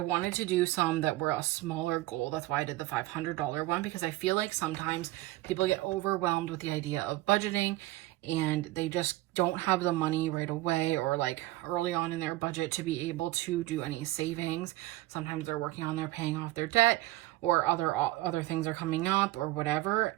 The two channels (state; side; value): quieter; left; 17.6 dB